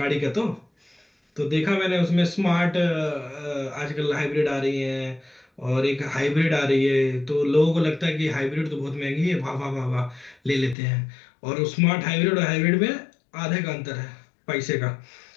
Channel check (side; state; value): right; drops out; at 10.8 s